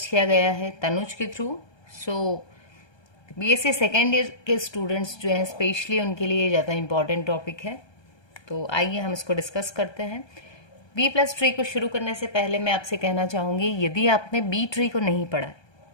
किया गया है तनुज के थ्रू। सो BSc सेकेंड ईयर के स्टूडेंट्स जो हैं स्पेशली उनके लिए ज़्यादा इम्पॉर्टेंट टॉपिक है। तो आइए हम इसको डिस्कस करते हैं। B+3 को शुरू करने से पहले मैं आपसे कहना चाहूँगी, यदि आपने B3 को नहीं पढ़ा है,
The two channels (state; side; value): late; right; 1.2 ms